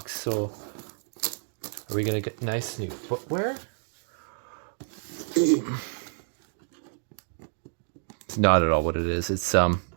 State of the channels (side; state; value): left; silent; 59 dB below the other